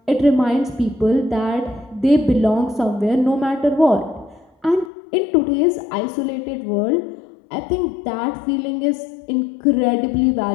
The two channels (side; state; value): right; drops out; at 4.9 s